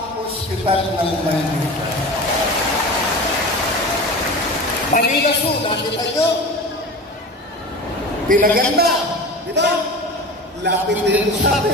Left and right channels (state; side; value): normal; both; correlation 0.32